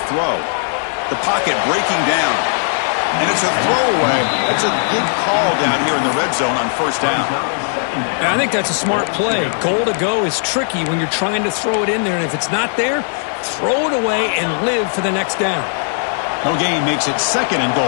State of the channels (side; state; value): right; silent; digital silence